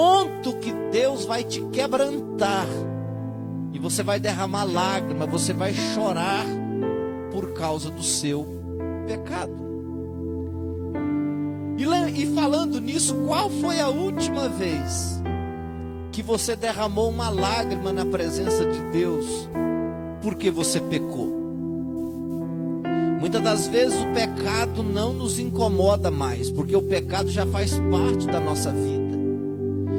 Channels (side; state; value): both; identical; correlation 1.00